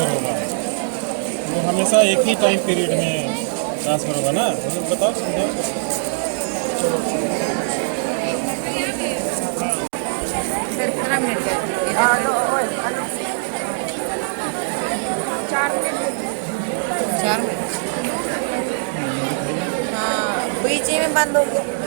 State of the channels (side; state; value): left; silent; digital silence